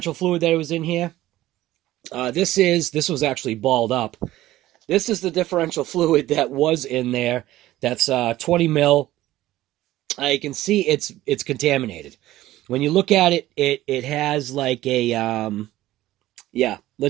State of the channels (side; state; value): left; quieter; 15.5 dB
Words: fluid that was in here. This was actually balled up. This is the differential fluid that was in there. That's 20 mil. You can see it's contaminated. When you look at it, it has like a yeah,